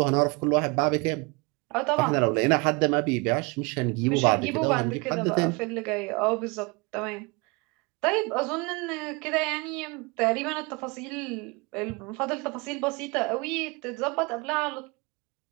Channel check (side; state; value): left; quieter; 28.0 dB